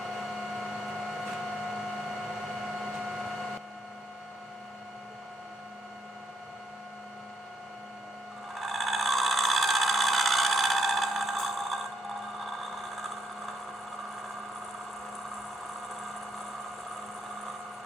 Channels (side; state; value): both; normal; correlation 0.76